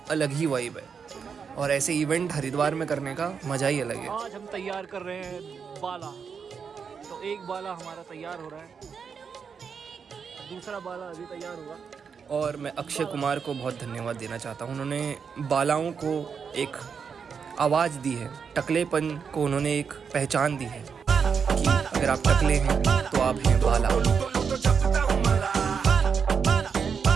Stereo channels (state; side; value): quieter; left; 6.3 dB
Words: अलग ही वाइब है। और ऐसे इवेंट हरिद्वार में करने का मज़ा ही अलग है। आज हम तैयार कर रहे हैं बाला, तो एक बाला हमारा तैयार हो रहा है, दूसरा बाला अभी तैयार होगा। और मैं अक्षय कुमार को बहुत धन्यवाद देना चाहता हूँ, उन्होंने बालाओं को एक आवाज़ दी है, टकलेपन को उन्होंने एक पहचान दी है कि अगर आप टकले हैं तो आप हैं बाला।